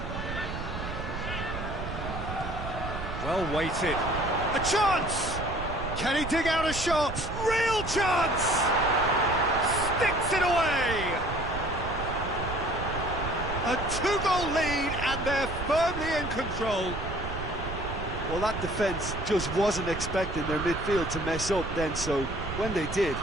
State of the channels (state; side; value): noise; right; rumble, 7 dB below the sound